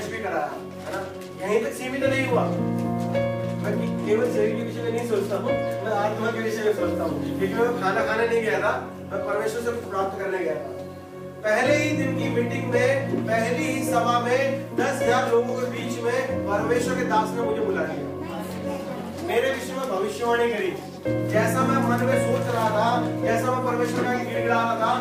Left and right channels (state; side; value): identical; both; correlation 1.00